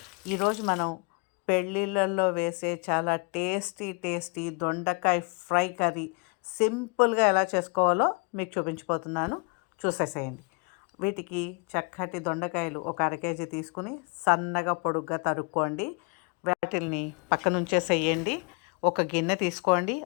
ఈరోజు మనం పెళ్ళిళ్ళల్లో వేసే చాలా టేస్టీ దొండకాయ ఫ్రై కర్రీ సింపుల్గా ఎలా చేసుకోవాలో మీకు చూపించిపోతున్నాను, చూసేసేయండి. వీటికి చక్కటి దొండకాయలు ఒక అర కేజీ తీసుకుని సన్నగా పొడుగ్గా తరుక్కోండి. వాటిల్ని పక్కనుంచేసేయండి. ఒక గిన్నె తీసుకోండి,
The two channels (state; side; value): quieter; right; 33.9 dB